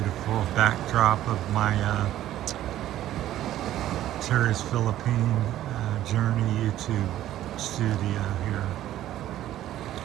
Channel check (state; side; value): quieter; left; 13.1 dB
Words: backdrop of my Terry's Philippine Journey YouTube studio here,